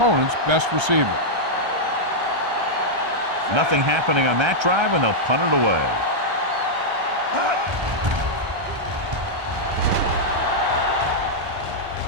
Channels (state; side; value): late; left; 1.3 ms